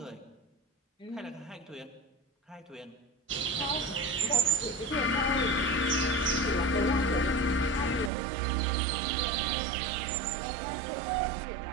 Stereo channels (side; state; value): left; drops out; at 8.1 s